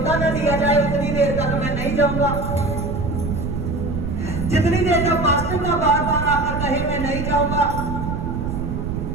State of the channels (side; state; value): right; noise; rumble, 3 dB below the sound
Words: न दिया जाए उतनी देर तक मैं नहीं जाऊंगा, जितनी देर तक पास्टर का बार बार आकर कहे मैं नहीं जाऊंगा।